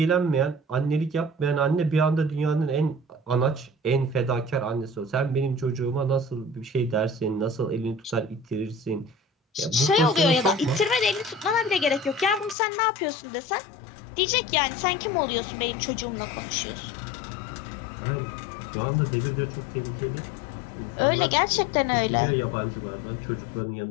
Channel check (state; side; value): drops out; right; at 12.6 s